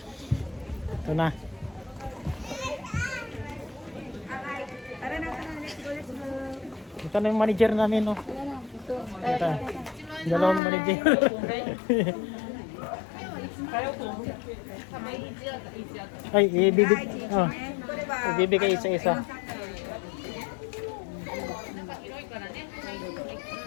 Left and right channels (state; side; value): drops out; right; at 10.6 s